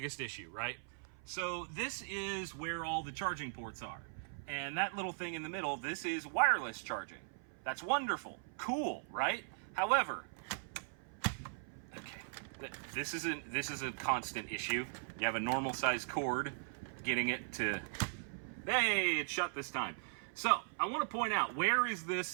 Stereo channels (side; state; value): left; silent; 52 dB below the other